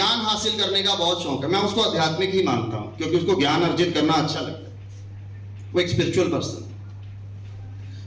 हासिल करने का बहुत शौक है, मैं उसको आध्यात्मिक ही मानता हूं, क्योंकि उसको ज्ञान अर्जित करना अच्छा लगता है, वो एक स्पिरिचुअल पर्सन।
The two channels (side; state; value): both; identical; correlation 1.00